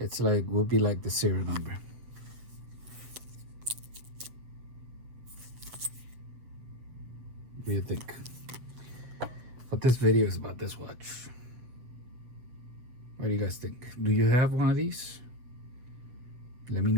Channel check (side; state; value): left; late; 7.9 ms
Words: like would be like the serial number. What do you think? But this video is about this watch. What do you guys think? Do you have one of these? Let me